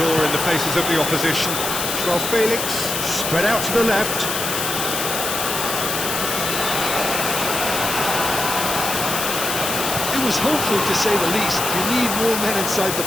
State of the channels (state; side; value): noise; left; hiss, 2 dB below the sound